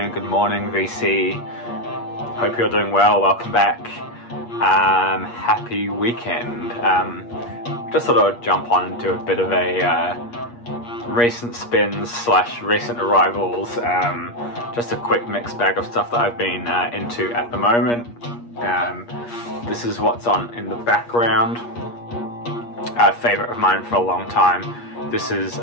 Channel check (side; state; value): right; late; 8.4 ms